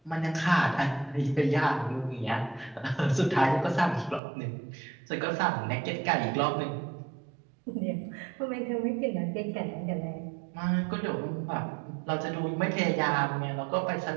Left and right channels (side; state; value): left; drops out; at 4.2 s